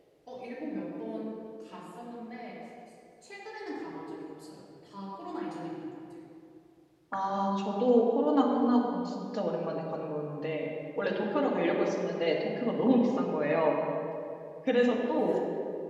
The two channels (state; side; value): identical; both; correlation 1.00